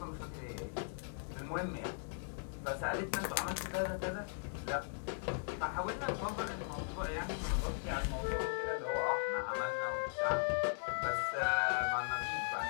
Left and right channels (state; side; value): silent; right; 52 dB below the other